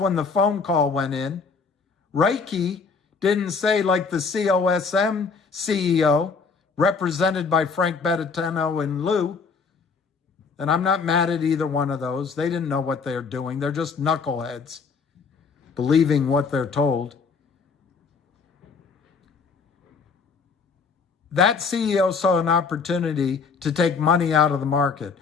the phone call went in. Reiki didn't say, like the COSM CEO, represented by Frank Bettino and Lou, and I'm not mad at either one of those. They didn't know what they're doing. They're just knuckleheads, believing what they're told. That CEO saw an opportunity to take money out of the market.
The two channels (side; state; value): right; quieter; 5.1 dB